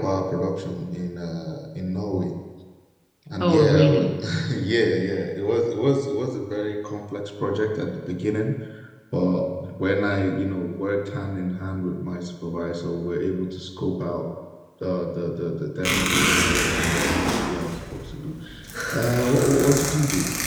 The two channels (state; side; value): identical; both; correlation 1.00